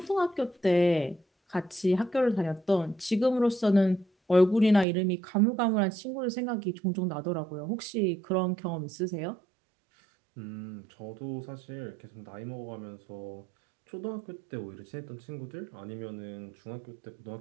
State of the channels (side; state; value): left; drops out; at 4.9 s